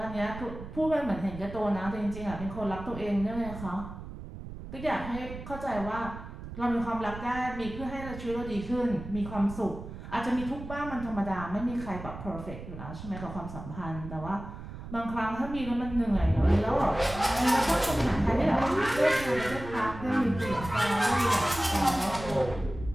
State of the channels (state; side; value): noise; right; rumble, 11 dB below the sound